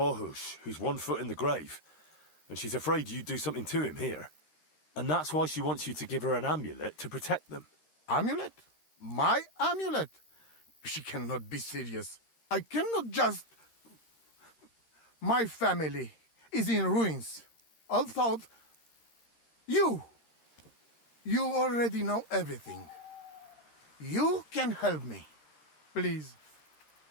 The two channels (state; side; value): late; right; 13 ms